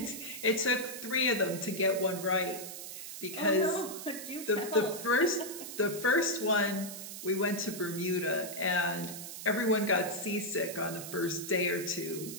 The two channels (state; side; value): noise; right; hiss, 9 dB below the sound